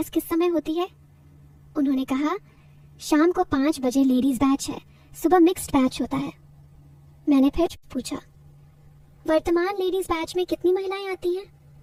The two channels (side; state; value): both; identical; correlation 1.00